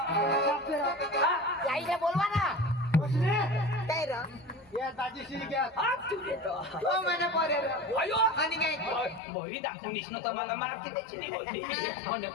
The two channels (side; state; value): right; drops out; at 9.2 s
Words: आईला बोलवा ना काय रे या दाजीशी घ्या हात तू देतो हो मैंने पोरे रे अयो आणि काय बहिरी दाखवून दिसणं तर मला मागते त्याची नाही होती म्हणलं